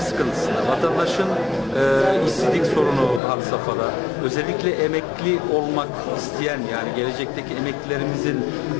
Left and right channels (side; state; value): right; drops out; at 3.2 s